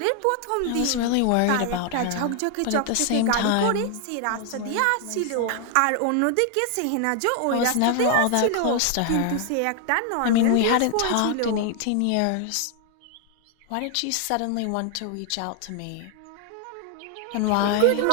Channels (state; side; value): different; both; correlation 0.00